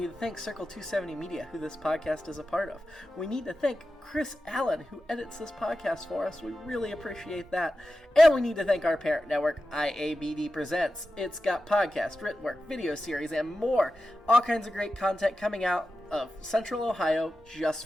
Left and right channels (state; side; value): normal; both; correlation 0.92